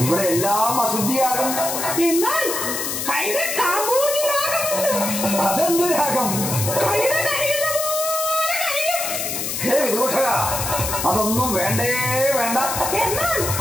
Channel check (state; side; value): noise; left; hiss, 3 dB below the sound